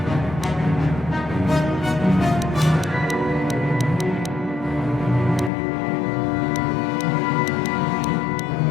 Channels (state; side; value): drops out; right; at 5.5 s